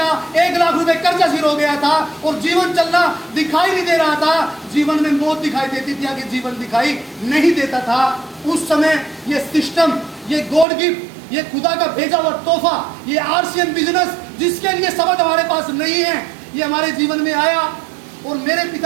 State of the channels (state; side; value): drops out; left; at 10.7 s